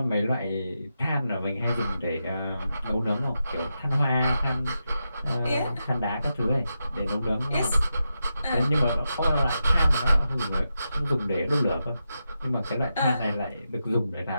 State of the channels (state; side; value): inverted; both; correlation -0.88